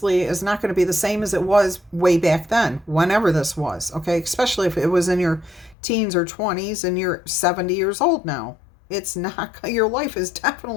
is not going to be the same as it was way back then, whenever this was, okay? Especially if it was in your teens or 20s and you're 70 years old now. It's not, your life is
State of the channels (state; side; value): drops out; right; at 5.8 s